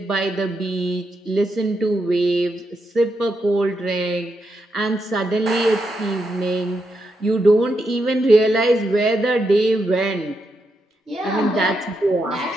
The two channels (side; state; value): both; normal; correlation 0.83